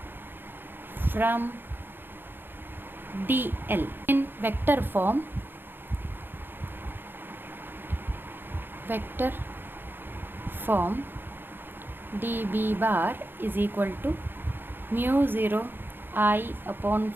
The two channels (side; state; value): left; late; 0.099 ms